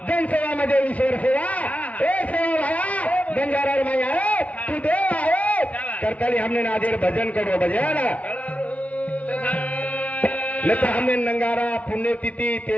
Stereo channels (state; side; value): late; right; 0.067 ms